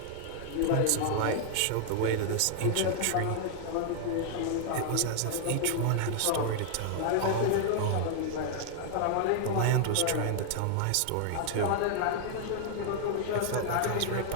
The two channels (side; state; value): both; different; correlation -0.01